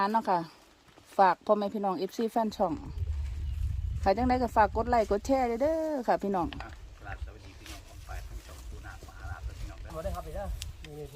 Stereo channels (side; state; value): both; identical; correlation 1.00